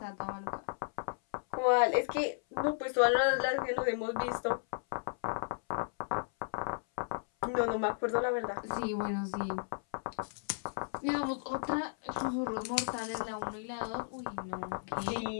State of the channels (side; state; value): right; silent; 55 dB below the other